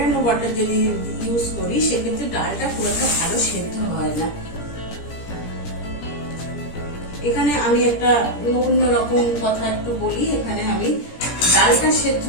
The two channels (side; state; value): right; late; 17 ms